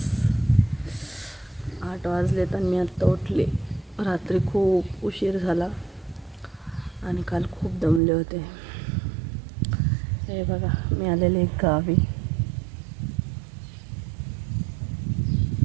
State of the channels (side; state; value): left; drops out; at 8.0 s